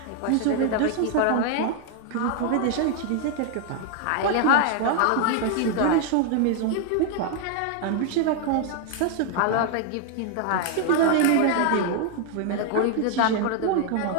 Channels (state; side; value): different; both; correlation 0.00